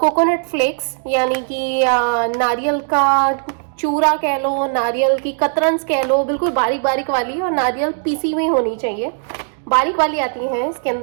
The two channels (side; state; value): left; silent; digital silence